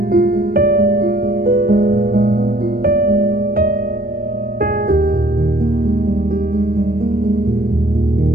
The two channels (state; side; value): late; left; 0.43 ms